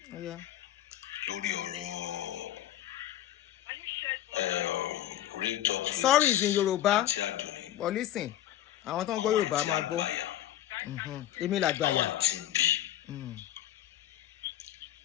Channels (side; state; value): right; quieter; 12.8 dB